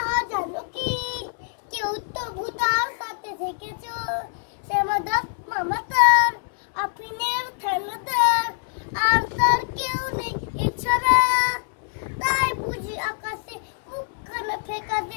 জানো কি? কেউ তো ভূতার সাথে দেখেছো। শ্যামাদাস মামা তার, আফিনের ঠেলাদার, আর তার কেউ নেই এছাড়া। তাই বুঝি আকাশে মুখখানা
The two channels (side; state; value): right; silent; digital silence